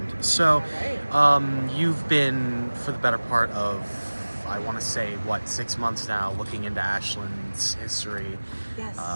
So, you've been, for the better part of, I want to say, 6 months now, looking into Ashland's history, Yes.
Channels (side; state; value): both; inverted; correlation -1.00